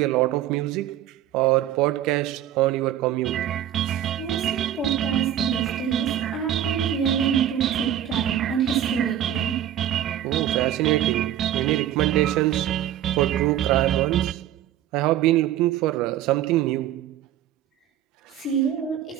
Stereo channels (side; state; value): left; quieter; 11.5 dB